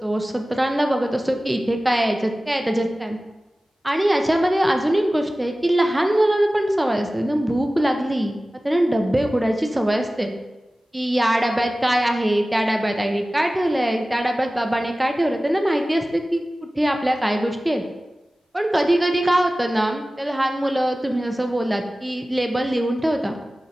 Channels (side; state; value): both; normal; correlation 0.97